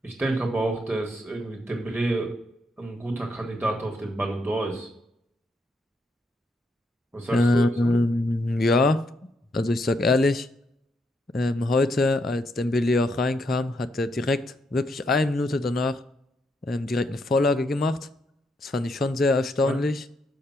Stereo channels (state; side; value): normal; both; correlation 0.77